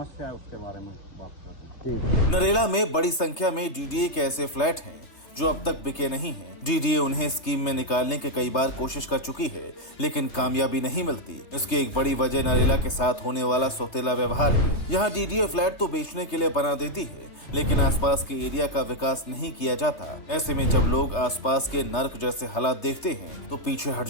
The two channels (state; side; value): late; right; 3.3 ms